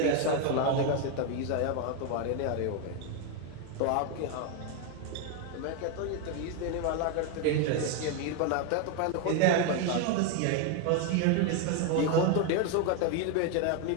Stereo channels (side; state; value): both; different; correlation 0.01